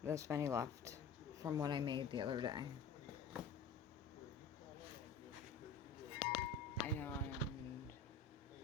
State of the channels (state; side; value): quieter; right; 5.5 dB